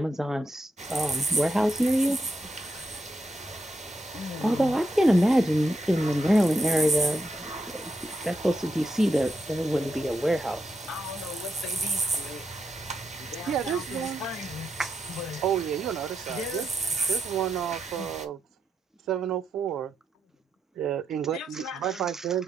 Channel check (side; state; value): both; normal; correlation 0.82